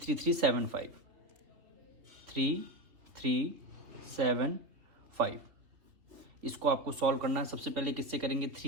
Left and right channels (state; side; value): late; left; 3.5 ms